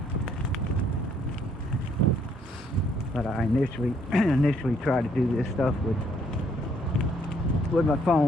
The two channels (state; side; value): normal; both; correlation 0.68